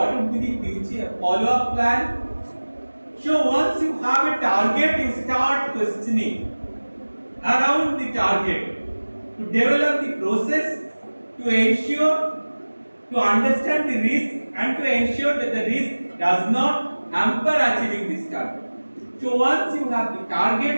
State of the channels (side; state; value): both; inverted; correlation -1.00